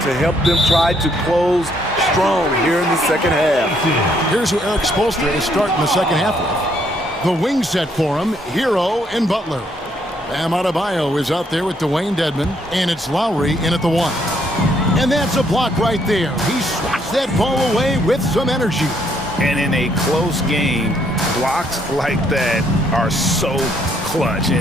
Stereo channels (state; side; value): normal; both; correlation 0.70